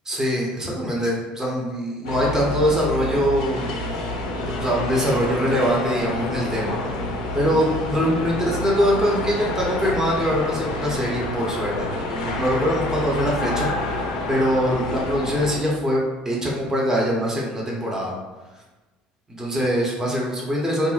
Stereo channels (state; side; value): normal; both; correlation 0.58